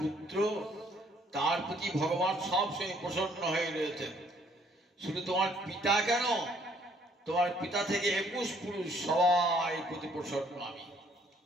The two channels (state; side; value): normal; both; correlation 0.64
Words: পুত্র তার প্রতি ভগবান সবসময় প্রসন্ন হয়ে রয়েছেন। শুধু তোমার পিতা কেন, তোমার পিতা থেকে 21 পুরুষ সবাই প্রতি প্রসন্ন আমি।